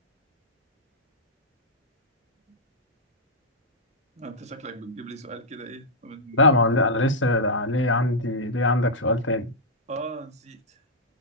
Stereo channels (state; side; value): normal; both; correlation -0.07